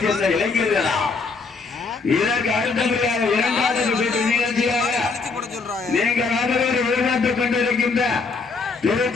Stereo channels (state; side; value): quieter; right; 4.4 dB